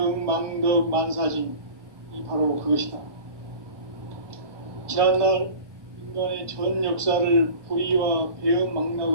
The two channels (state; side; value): late; left; 1.2 ms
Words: 망덕 만사진, 이 바로 그것이다. 지난날 인간의 전 역사를 불의와 배음